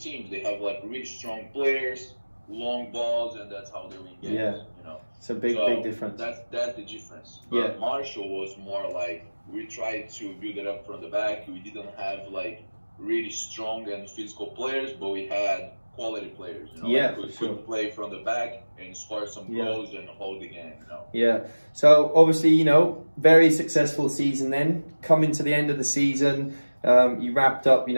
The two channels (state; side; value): inverted; both; correlation -1.00